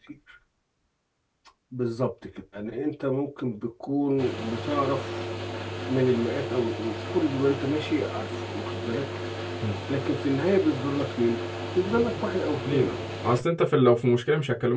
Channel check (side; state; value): both; identical; correlation 1.00